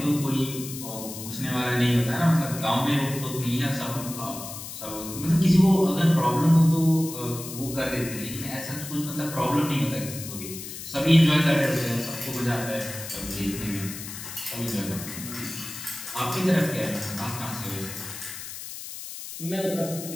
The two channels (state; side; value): noise; left; hiss, 10 dB below the sound